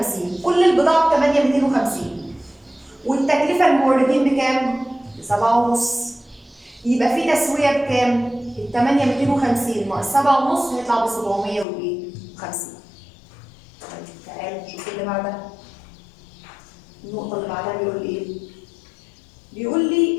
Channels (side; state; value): right; drops out; at 11.7 s